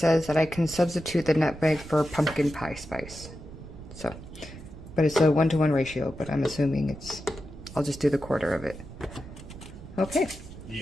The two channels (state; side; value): noise; right; rumble, 14 dB below the sound